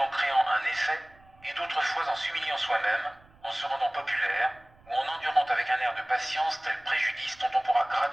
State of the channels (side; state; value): right; noise; rumble, 28 dB below the sound